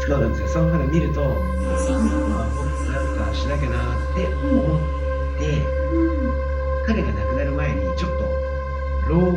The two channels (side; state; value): both; identical; correlation 1.00